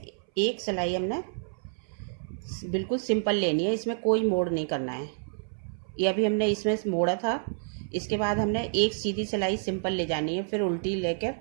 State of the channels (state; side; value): silent; left; 59 dB below the other